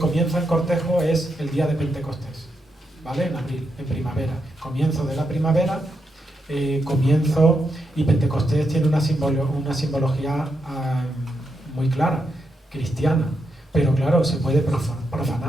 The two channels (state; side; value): normal; both; correlation 0.83